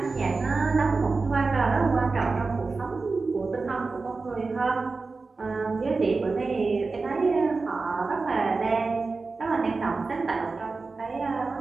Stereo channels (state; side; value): quieter; left; 4.0 dB